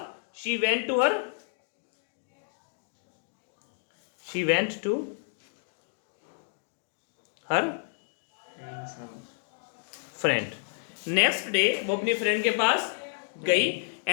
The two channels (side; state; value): right; silent; digital silence